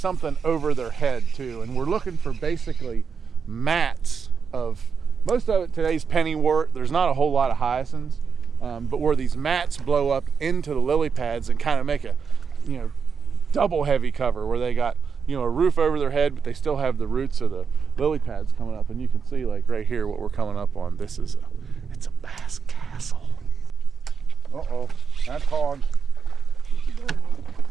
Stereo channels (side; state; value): left; quieter; 6.0 dB